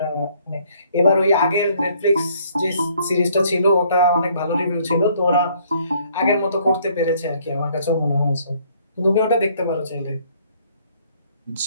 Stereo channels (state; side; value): inverted; both; correlation -0.63